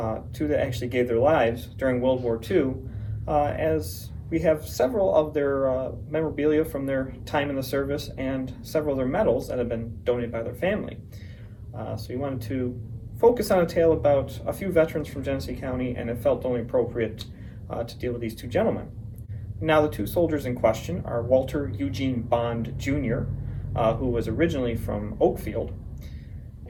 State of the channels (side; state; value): both; identical; correlation 1.00